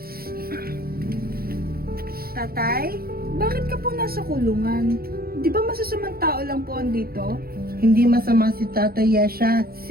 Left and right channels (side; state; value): left; late; 0.44 ms